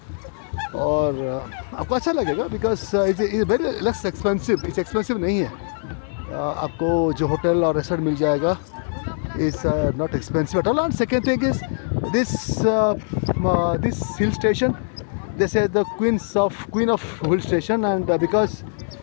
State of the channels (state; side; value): silent; right; 58 dB below the other